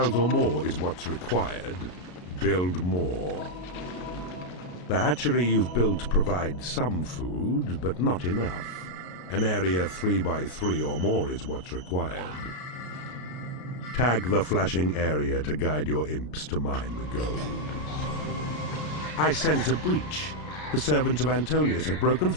or more is what's required. Build more. The hatchery you've built provides some food, but not enough. An area 3 by 3 or more is what's required. Tag the flashing area to guide your imps to mine the gold. I sense a breach. The servants of Antonius have broken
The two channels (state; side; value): late; right; 33 ms